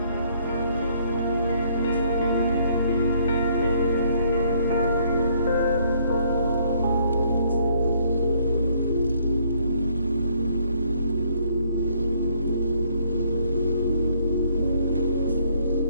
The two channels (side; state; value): both; inverted; correlation -0.66